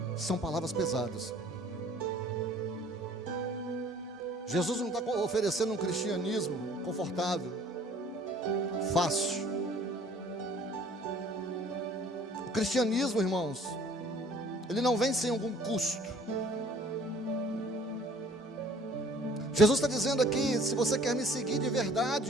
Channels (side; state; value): both; normal; correlation 0.54